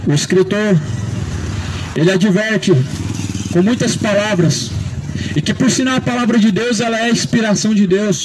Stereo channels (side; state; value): both; identical; correlation 1.00